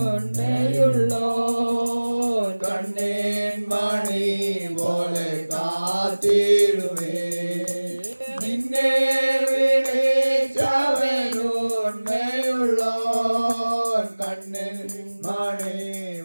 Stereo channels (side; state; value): both; inverted; correlation -1.00